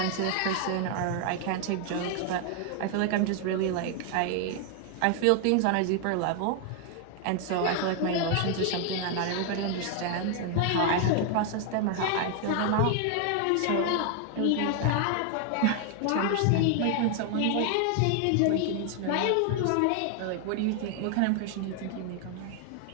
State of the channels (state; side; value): different; both; correlation 0.00